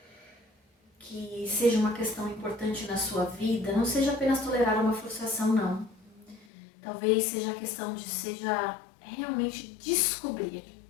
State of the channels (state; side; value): drops out; right; at 6.5 s